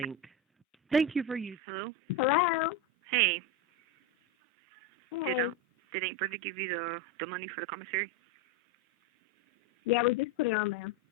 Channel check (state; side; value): normal; both; correlation 0.13